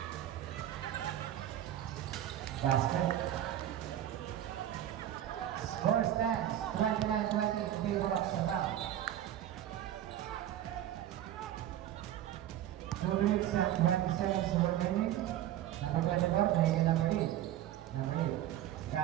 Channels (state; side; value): quieter; left; 12.1 dB